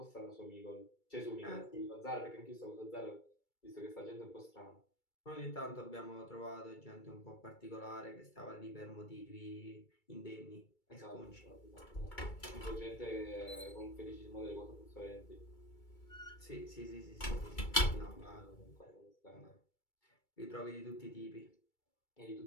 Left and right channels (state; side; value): late; right; 2.3 ms